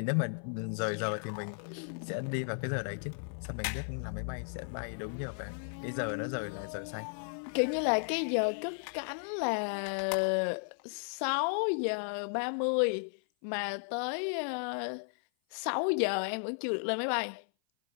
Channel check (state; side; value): silent; right; 55 dB below the other